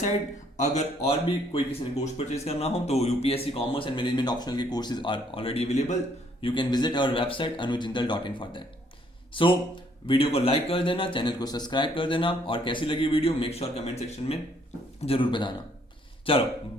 अगर और भी कोई किसी ने कोर्स परचेज करना हो तो UPSC commerce and management optional के courses are already available. You can visit our website anujjindal.in for that. So video को लाइक कर देना, चैनल को सब्सक्राइब कर देना, और कैसी लगी video make sure comment section में जरूर बताना। चलो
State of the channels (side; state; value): both; normal; correlation 0.66